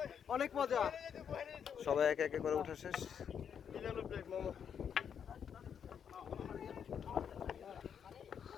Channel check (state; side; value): quieter; right; 7.8 dB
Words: অনেক মজা। সবাই একে একে করে উঠা শেষ।